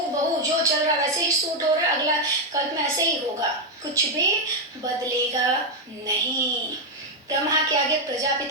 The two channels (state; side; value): normal; both; correlation 0.04